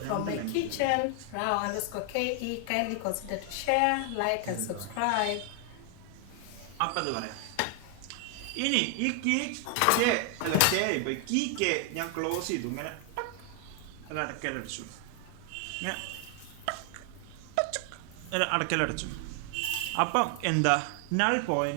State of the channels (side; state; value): both; different; correlation 0.00